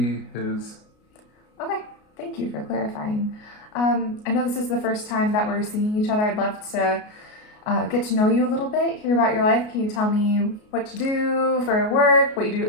his. Okay, thank you for clarifying. I know this is the first time that we're seeing each other. I'd love to get to know you a little bit, hear about your life. Can you tell me what you do for work, what you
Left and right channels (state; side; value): late; right; 33 ms